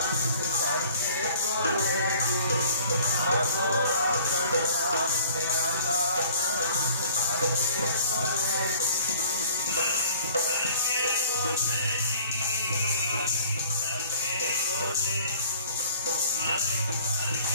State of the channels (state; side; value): inverted; both; correlation -0.51